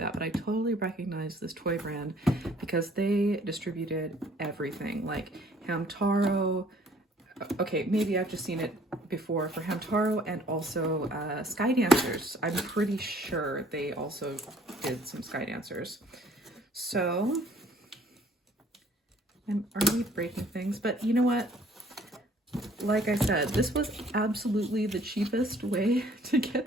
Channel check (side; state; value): both; normal; correlation 0.57